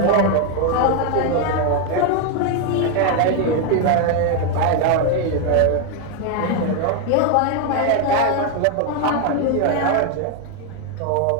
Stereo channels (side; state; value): both; different; correlation 0.01